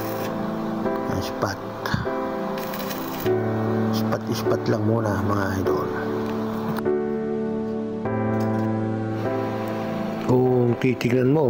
Ispat lang muna mga idol. Kung titignan mo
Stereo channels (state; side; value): identical; both; correlation 1.00